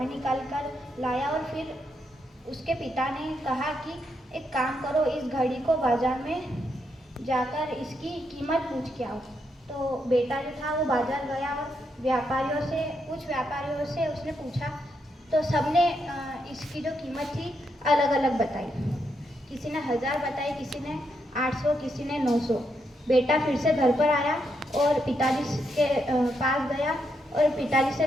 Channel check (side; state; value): both; normal; correlation 0.80